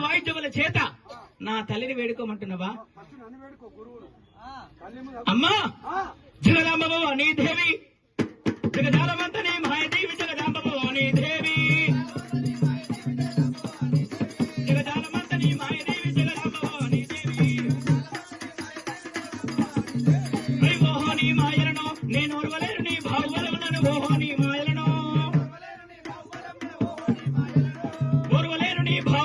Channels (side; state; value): both; identical; correlation 1.00